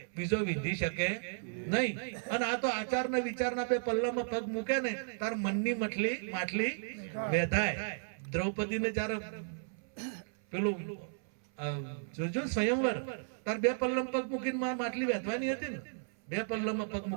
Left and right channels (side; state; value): left; silent; 55 dB below the other